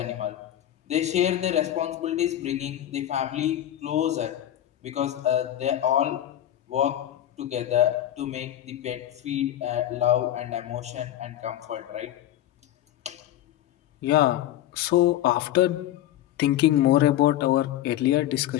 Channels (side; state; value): right; quieter; 12.5 dB